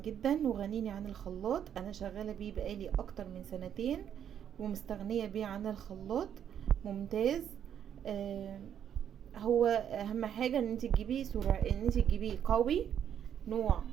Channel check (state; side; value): quieter; left; 9.2 dB